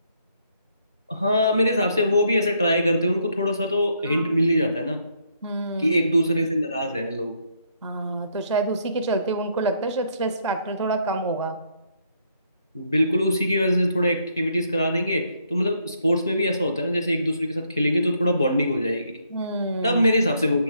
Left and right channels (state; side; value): inverted; both; correlation -0.72